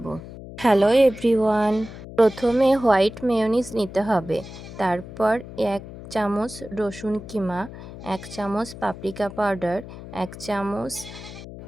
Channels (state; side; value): noise; left; hum, 14 dB below the sound